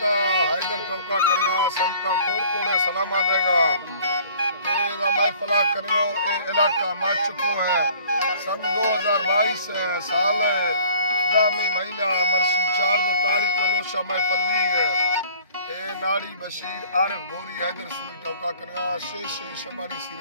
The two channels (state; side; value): inverted; both; correlation -0.52